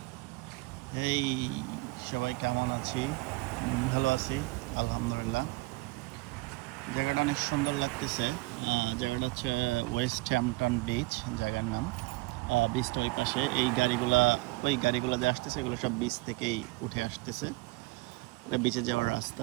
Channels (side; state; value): left; quieter; 23.9 dB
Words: এই সবাই কেমন আছি? ভালো আছি, আলহামদুলিল্লাহ। জায়গাটা অনেক সুন্দর লাগতেছে। জায়গাটা হচ্ছে ওয়েস্ট হ্যাম্পটন বিচ, জায়গার নাম। বিচটা ওই পাশে, ওই গাড়িগুলো যে আসতেছে এগুলো সব বিচ থেকেই উঠে আসতেছে। এটা বিচে যাওয়ার